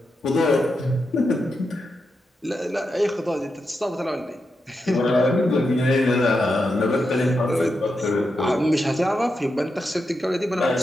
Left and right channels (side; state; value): both; normal; correlation 0.86